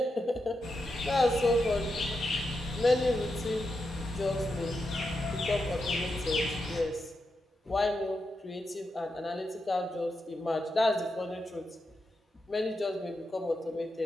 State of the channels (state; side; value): normal; both; correlation 0.86